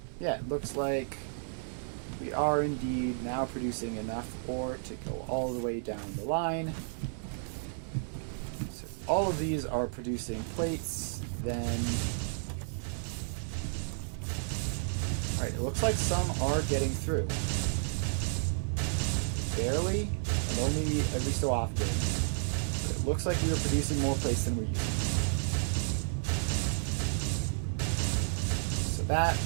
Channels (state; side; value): silent; left; 56 dB below the other